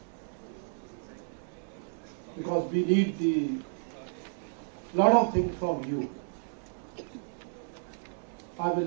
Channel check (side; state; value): left; silent; digital silence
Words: because we need the lot of things from you. I will